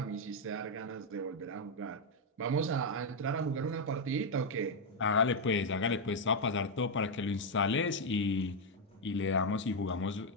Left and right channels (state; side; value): normal; both; correlation 0.01